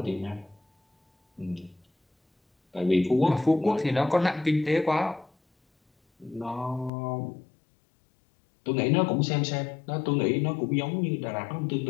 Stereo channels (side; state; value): right; drops out; at 6.9 s